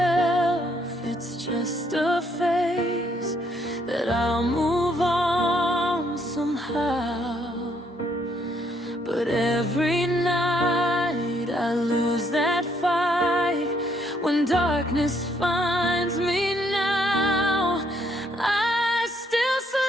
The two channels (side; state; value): both; normal; correlation 0.70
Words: it's just a phase, that I'll move on somehow. But every night I lose that fight. When darkness finds me now, I still